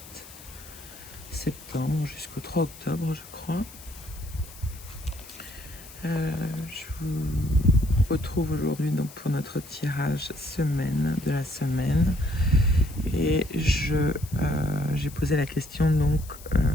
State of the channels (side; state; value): left; noise; hiss, 18 dB below the sound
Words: septembre jusqu'au 3 octobre, je crois. Je vous retrouve aujourd'hui donc pour notre tirage de la semaine. Et j'ai posé la question donc